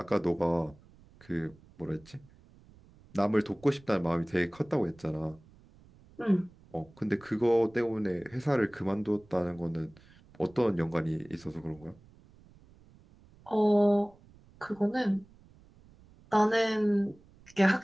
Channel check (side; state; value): right; noise; rumble, 26 dB below the sound